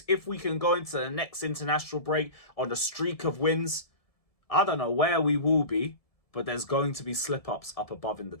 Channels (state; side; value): late; right; 1.7 ms